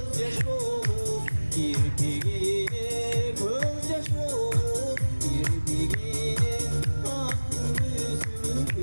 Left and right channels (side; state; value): both; inverted; correlation -1.00